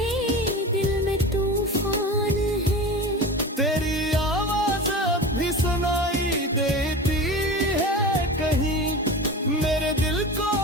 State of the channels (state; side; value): normal; both; correlation 0.31